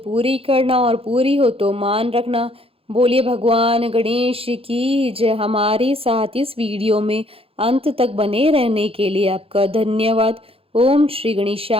करना और पूरी हो तो मान रखना। बोलिए भगवान गणेश की जय। हमारे साथ इस वीडियो में अंत तक बने रहने के लिए आपका धन्यवाद। ओम श्री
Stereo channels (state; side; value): late; left; 0.27 ms